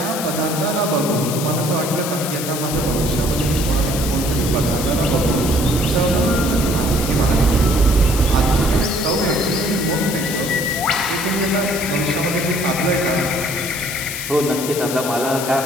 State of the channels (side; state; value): left; noise; hiss, 6 dB below the sound